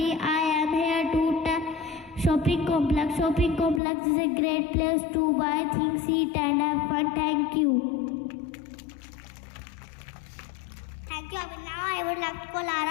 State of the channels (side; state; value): right; drops out; at 3.8 s